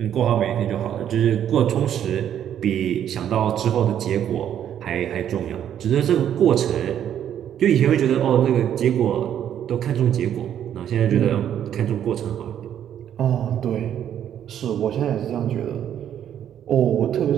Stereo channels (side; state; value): left; quieter; 10.0 dB